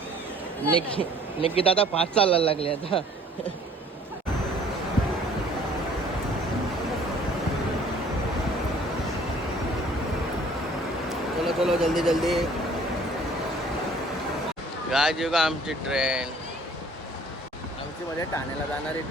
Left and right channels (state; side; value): normal; both; correlation 0.55